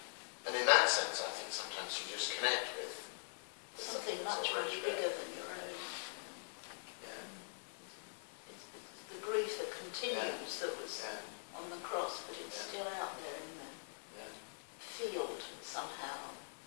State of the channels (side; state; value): right; silent; digital silence